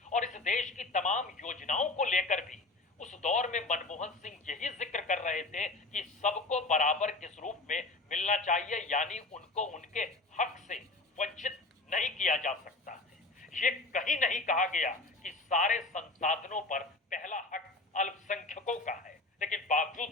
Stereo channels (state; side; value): quieter; right; 3.3 dB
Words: और इस देश की तमाम योजनाओं को लेकर भी उस दौर में मनमोहन सिंह यही जिक्र कर रहे थे कि सबको बराबर किस रूप में मिलना चाहिए, यानी उनको उनके हक से वंचित नहीं किया जा सकता है। ये कहीं नहीं कहा गया कि सारे संसाधनों पर पहला हक अल्पसंख्यकों का है, लेकिन बावजूद